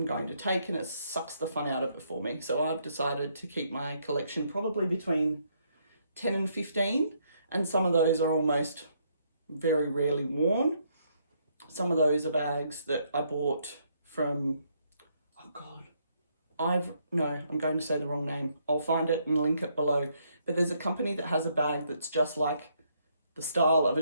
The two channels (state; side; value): inverted; both; correlation -0.72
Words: going to take, and it sucks the fun out of it for me. So I've decided to keep my collection probably between 10 and 15, and some of those are almost very rarely worn. Some of those are bags that I bought from, I'm going to say the wrong name. I'll find it and link it below. But there's a company that has a bag that's just like the style of